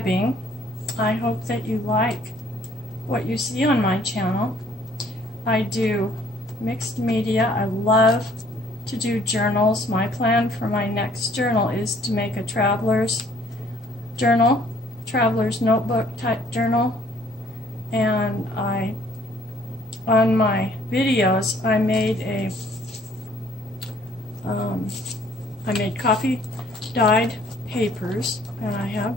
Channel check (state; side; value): normal; both; correlation 0.60